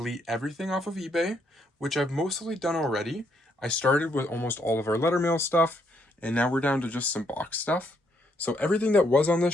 everything off of eBay, which I've mostly done already. I started with almost all of our letter mail stuff, and now we're down to just some box stuff. So everything that was on this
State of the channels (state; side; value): normal; both; correlation 0.73